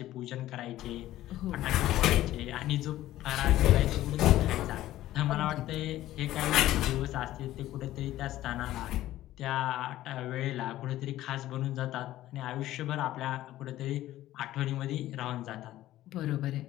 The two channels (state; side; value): quieter; right; 14.6 dB